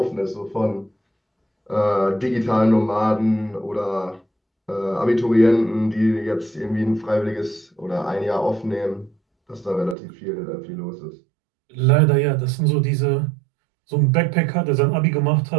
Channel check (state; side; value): drops out; left; at 10.0 s